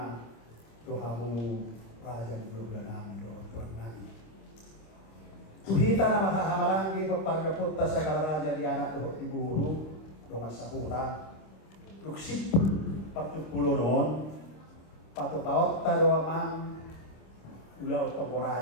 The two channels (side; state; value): right; late; 26 ms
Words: tuhamu raja bulan nami doon turang nami tuhita na makahamarangi papargaputta sa kalaraja di anak doon iburu doon sahuta luksipul partupulo noon patupaot doa mang ulaw toko